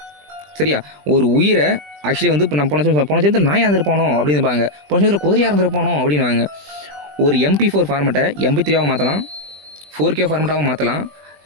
சரியா? ஒரு உயிரை ஆக்சுவலி வந்து இப்போ நம்ம போன சேர்ந்து நாயாக இருந்திருப்பானோ அப்படின்பாங்க, போன சேர்ந்து குதிரையாக இருந்திருப்பானோ அப்படின்வாங்க. ஒரு MP4 ஃபார்மெட்டை MP3 மாற்றலாம், 4K ஃபார்மெட்டாகவும் மாற்றலாம்,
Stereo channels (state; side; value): late; left; 20 ms